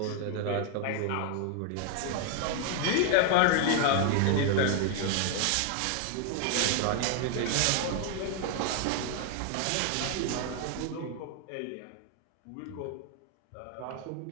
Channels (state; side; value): different; both; correlation 0.01